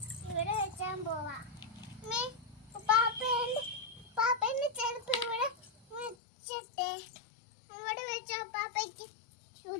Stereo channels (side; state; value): right; drops out; at 6.2 s